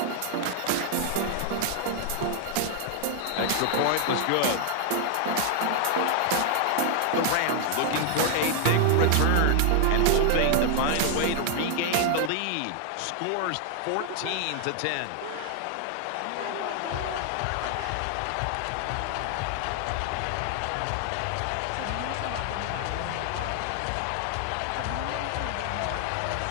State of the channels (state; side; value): different; both; correlation 0.00